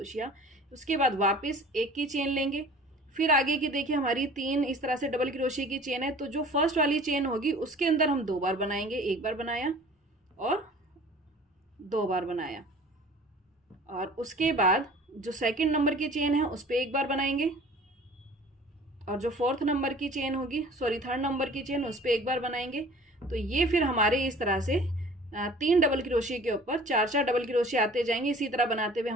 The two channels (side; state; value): both; normal; correlation 0.46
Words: उसके बाद वापस 1 की चेन लेंगे, फिर आगे की देखिए हमारी 3 इस तरह से डबल क्रोशिया की चेन है, तो जो फर्स्ट वाली चेन होगी उसके अंदर हम 2 बार बनाएंगे। 1 बार बनाया और 2 बार बनाया, और उसके बाद जो सेकंड नंबर की चेन है उस पर 1 बार बनाएंगे और जो थर्ड नंबर की चेन उस पर 1 बार बनाएंगे। तो ये फिर हमारे इस तरह से 3 डबल क्रोशिया के ऊपर 4-4 डबल क्रोशिया आते जाएंगे। इसी तरह बनाते हुए